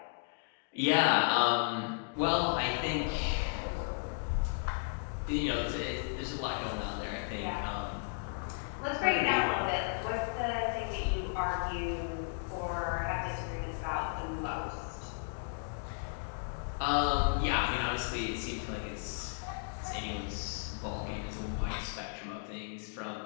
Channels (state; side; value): silent; right; digital silence